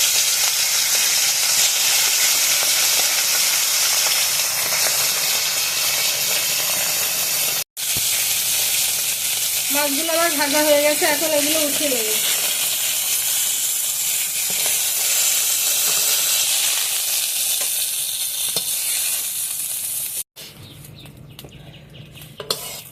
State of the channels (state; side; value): identical; both; correlation 1.00